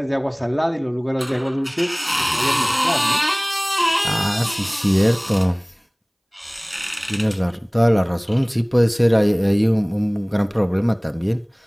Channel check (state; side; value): identical; both; correlation 1.00